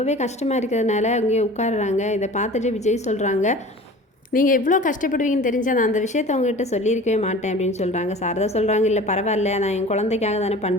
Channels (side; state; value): both; normal; correlation 0.41